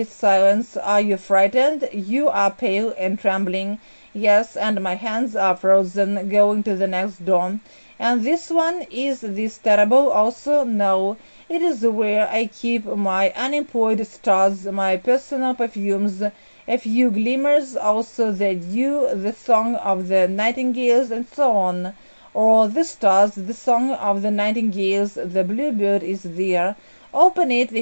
Silence. Are you frightened? You are pale and trembling. Yes, and my hands are frozen. Going to the next door. And this one, is this terrible also? No, it is where I keep my unemployed stars, my personal perfumes, a few glimmers, also the dew, the song of the nightingales, and so on. Or the stars, the song of the nightingales, the bluebird is there. Open it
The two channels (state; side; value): inverted; both; correlation -1.00